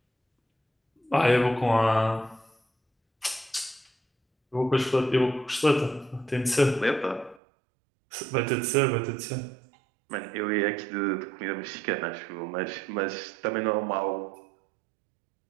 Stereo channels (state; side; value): drops out; left; at 7.4 s